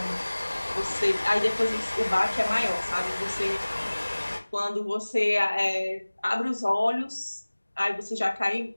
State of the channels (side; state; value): both; inverted; correlation -1.00